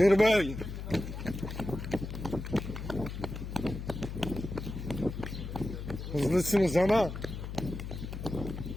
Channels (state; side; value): noise; left; hum, 7 dB below the sound